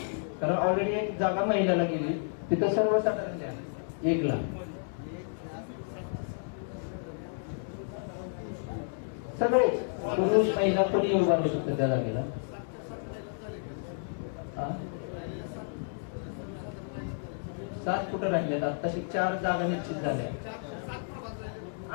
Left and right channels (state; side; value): silent; right; 57 dB below the other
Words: कारण ऑलरेडी 1 जागा महिलाला गेली. तिथं सर्वसाधारण द्या 1 ला. सगळे पुरुष महिला कोणी उभा राहू शकतो त्या जागेला. 7 कुठं राहिलेत? आताशी 4 जागा निश्चित झाल्या.